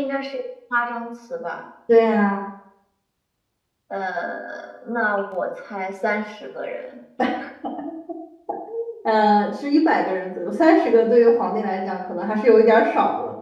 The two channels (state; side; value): identical; both; correlation 1.00